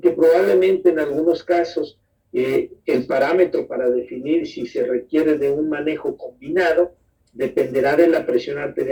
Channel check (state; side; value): identical; both; correlation 1.00